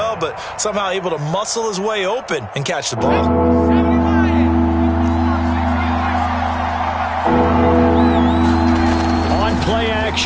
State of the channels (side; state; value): both; identical; correlation 1.00